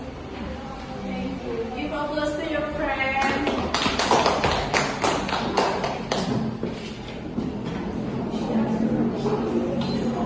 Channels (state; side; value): identical; both; correlation 1.00